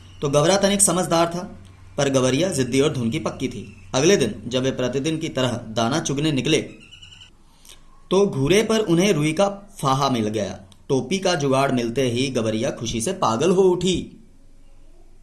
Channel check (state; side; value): identical; both; correlation 1.00